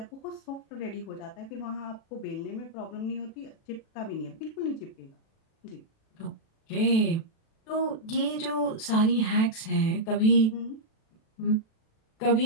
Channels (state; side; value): late; right; 36 ms